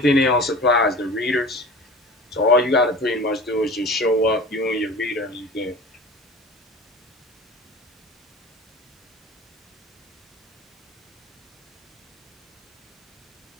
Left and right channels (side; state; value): both; normal; correlation 0.38